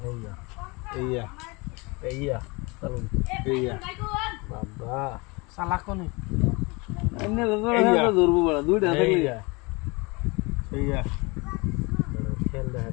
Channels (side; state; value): right; quieter; 27.0 dB